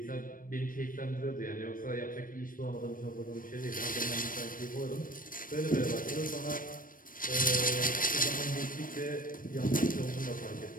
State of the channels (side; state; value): right; late; 0.40 ms